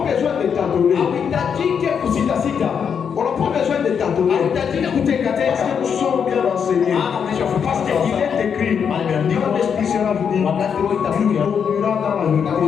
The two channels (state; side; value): quieter; right; 7.1 dB